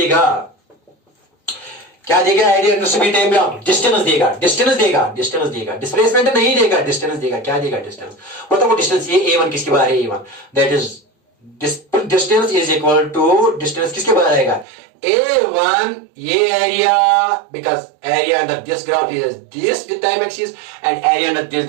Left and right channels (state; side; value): drops out; left; at 14.7 s